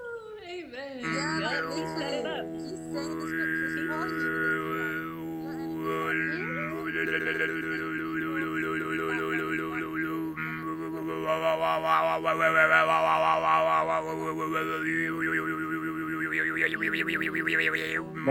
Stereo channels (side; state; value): both; identical; correlation 1.00